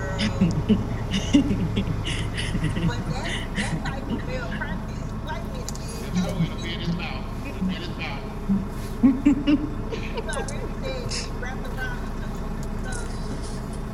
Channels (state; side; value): identical; both; correlation 1.00